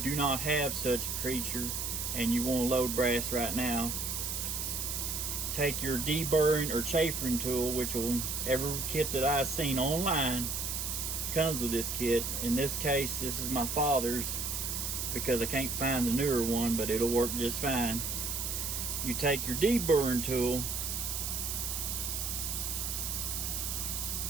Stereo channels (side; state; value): right; noise; hiss, 2 dB below the sound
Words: not have such a creature and you want to load brass right now, take your deburring or chafering tool, which will, every kit that I've seen online comes with this kit. In this case, this is my father's because I can't find the newer one, but it'll work just fine. You take your deburring tool,